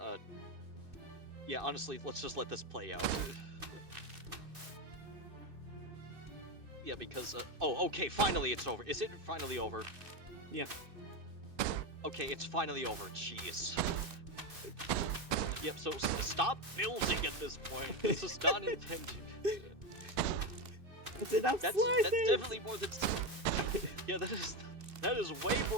yeah, honestly, let's just let this play out. Yeah, because, oh, okay, finally it's over. Is it finally over? Yeah. Okay, it's finally over, jeez. Yep, so stop building at this point. This is not intended. That's enough That's slices! definitely more than... Yeah, that is way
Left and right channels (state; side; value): late; left; 2.6 ms